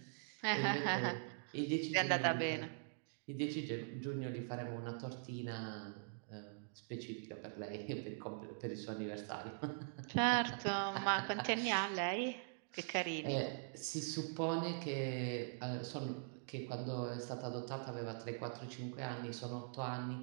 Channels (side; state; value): left; silent; digital silence